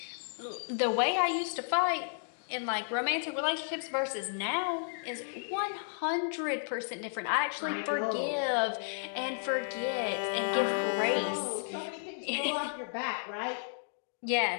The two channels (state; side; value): silent; right; digital silence